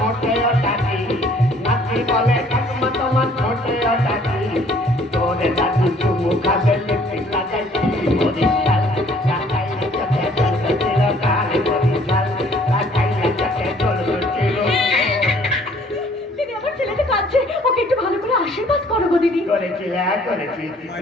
ওটাকি, নাতি বলে ঠাকুমা তোমার ঠোঁটে ওটাকি, তোর দাদু চুমু খাবে লিপস্টিক লাগাইছি, মরিচ ছাল লাগাইলে চোখে জ্বলবে চিরকাল, মরিচ ছাল লাগাইলে চোখে জ্বলবে চিরকাল। দিদি আমার ছেলেটা কাঁদছে, ওকে একটু ভালো করে আশীর্বাদ করো গো দিদি। করেছি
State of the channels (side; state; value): both; normal; correlation 0.59